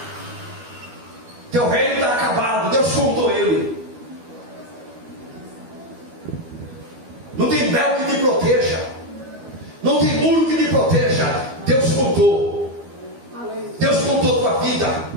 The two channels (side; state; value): left; late; 12 ms